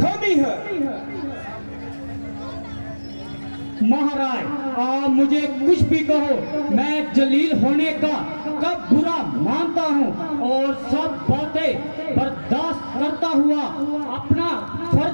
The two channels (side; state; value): both; inverted; correlation -1.00